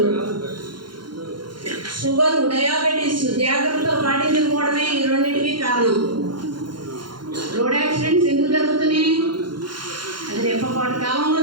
షుగర్, డయాబెటీస్ జాగ్రత్తలు పాటించకపోవడమే ఈ రెండింటికి కారణం. రోడ్ యాక్సిడెంట్స్ ఎందుకు జరుగుతున్నాయి? అది రేపటి కాలంలో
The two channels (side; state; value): left; late; 0.72 ms